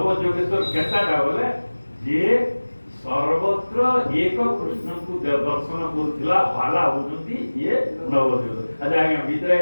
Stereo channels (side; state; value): both; inverted; correlation -1.00